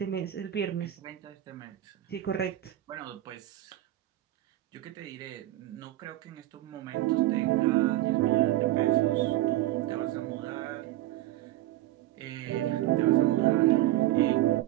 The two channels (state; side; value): quieter; left; 15.1 dB